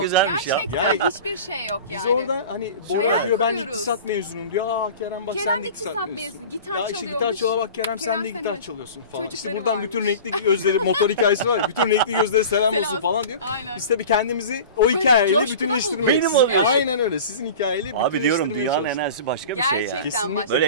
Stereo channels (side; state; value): both; inverted; correlation -0.37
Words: güzelmiş ya. Gerçekten Yani- hiçbir şey yok yani. biz orada hani Bora Hayal diyor ben kuruyoruz. iktisat mezunuyum diyor. Kerem bak Kerem sen de de iktisat iktisat mezunu, mezunu. gitar Ya işte çalıyormuş. gitar çala bak Kerem sen Kerem de sen gitar de- çalıyorsun falan. İşte çocukları buradan varmış. bütün renkli gözleri motor hikayesi var ya. Bütün renkli gözlere selam olsun Selam. falan diyor. Aynen. Biz tabii kendimizi o hikayeyle coşkuna bütünleştirmeyi. bulduk. Benim oluyor. Aynen öyle. Sizin hikayeyle Abi diyorum bütünleştirmeye dünyanın çalıştık. enerjisi başka bir şey ya. Gerçekten Kesinlikle başka.